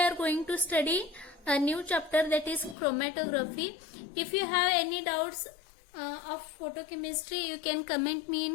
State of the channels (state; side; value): drops out; right; at 2.8 s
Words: going to study a new chapter, that is chromatography. If you have any doubts of photochemistry, you can comment me